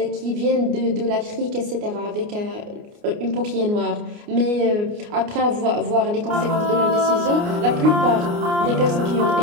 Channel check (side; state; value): left; late; 29 ms